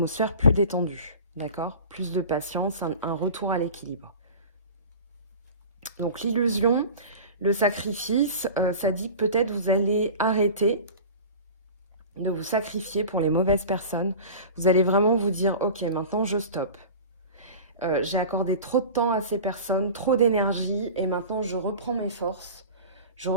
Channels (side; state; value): both; inverted; correlation -0.36